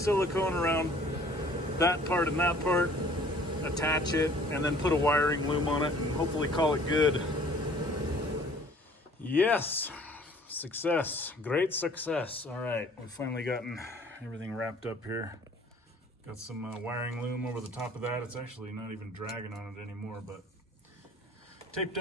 around that part and that part, attach it, and then put a wiring loom on it and hopefully call it good. Yes, success, great success. All right, we've finally gotten everything wrapped up here. Got some wiring loom over the top of that. It's actually not even dragging on it anymore, but taped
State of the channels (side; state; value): both; normal; correlation 0.53